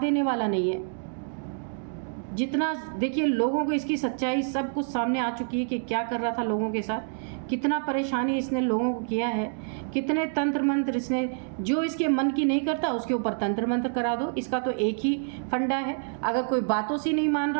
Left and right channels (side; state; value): left; silent; digital silence